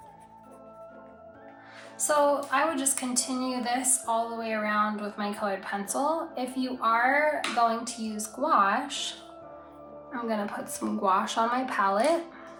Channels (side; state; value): both; identical; correlation 1.00